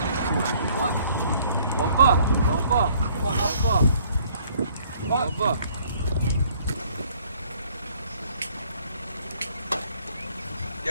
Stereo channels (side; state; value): both; inverted; correlation -0.61